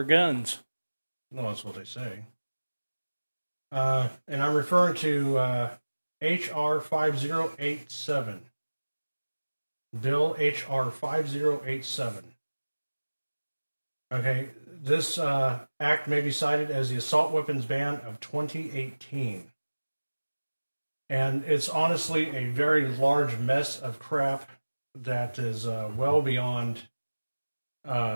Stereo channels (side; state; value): both; inverted; correlation -1.00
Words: guns. Well, that's what they say. And I'm referring to H.R. 5087. Bill H.R. 5087. Okay, this act may be cited as the assault weapons ban of 2018. And it's honestly a very large mess of crap that is well beyond